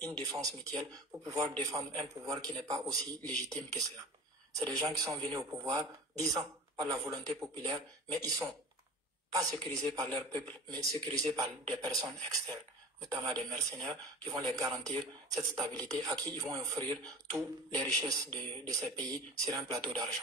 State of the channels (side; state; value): both; normal; correlation 0.38